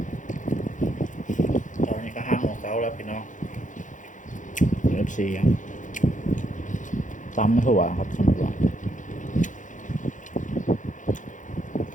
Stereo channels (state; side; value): late; right; 0.37 ms